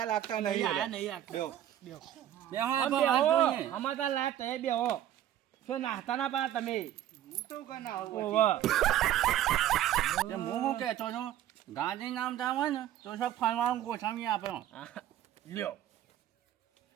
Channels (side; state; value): left; quieter; 11.9 dB